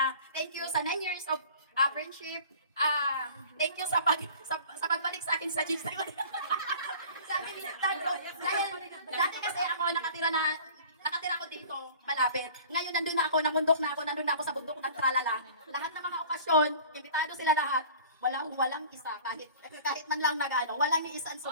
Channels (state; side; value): inverted; both; correlation -0.45